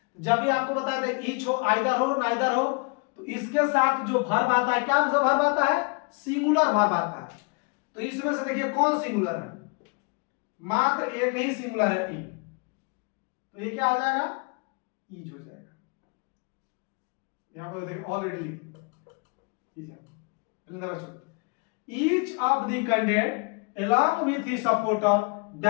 जब भी आपको बताया था ईच हो, आइदर हो, नाइदर हो, तो इसके साथ जो वर्ब आता है, क्या वर्ब आता है, सिंगुलर वर्ब आता है। तो इसमें से देखिए कौन सिंगुलर है, मात्र एक ही सिंगुलर है, ई। तो ये क्या हो जाएगा, ईज हो जाएगा। यहां पर देखिए already each of the candidate along with his supporter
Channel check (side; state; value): right; quieter; 34.0 dB